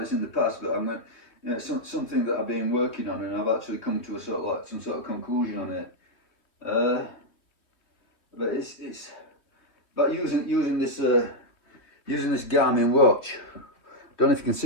in the past, but I'm going, you know, something that I've been working on, and I've actually come to a sort of like some sort of conclusion on it. But it's about using this Garmin watch. Don't know if you can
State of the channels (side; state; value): right; late; 2.9 ms